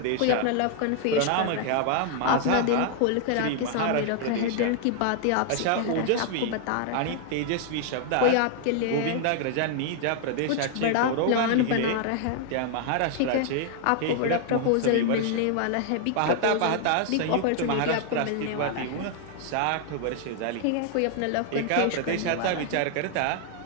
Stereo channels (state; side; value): different; both; correlation 0.00